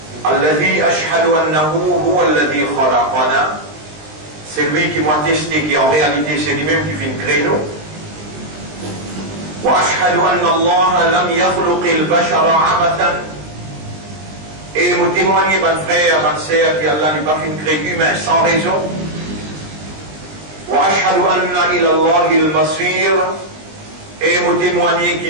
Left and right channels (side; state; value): left; late; 20 ms